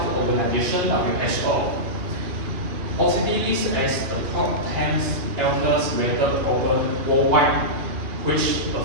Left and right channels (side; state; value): left; late; 2.6 ms